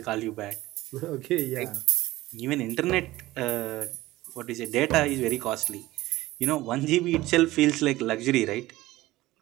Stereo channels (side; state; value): left; quieter; 17.6 dB